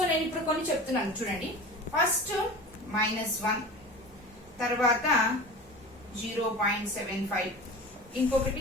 నేను ఇప్పుడు కొన్ని చెప్తున్నాను చూడండి. ఫస్ట్ -1, తర్వాత 0.75,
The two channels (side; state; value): both; normal; correlation 0.35